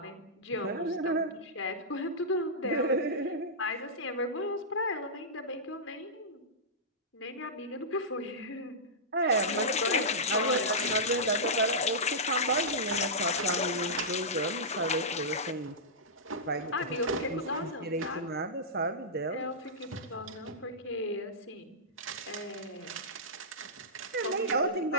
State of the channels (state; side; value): normal; both; correlation -0.14